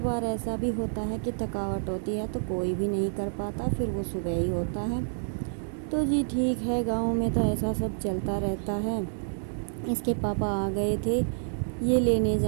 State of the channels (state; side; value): silent; left; digital silence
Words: ऐसा भी होता है कि थकावट होती है तो कोई भी नहीं कर पाता, फिर वो सुबह ही होता है। तो जी ठीक है, गाँव में तो ऐसा सब चलता रहता है। इसके पापा आ गए थे, ये लेने